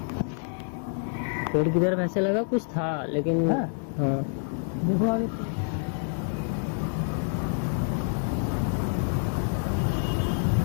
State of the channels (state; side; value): silent; right; 60 dB below the other